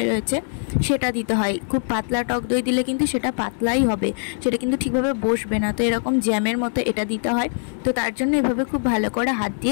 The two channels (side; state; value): right; silent; digital silence